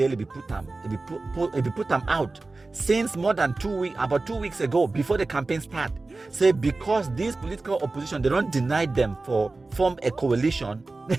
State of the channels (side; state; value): left; quieter; 3.4 dB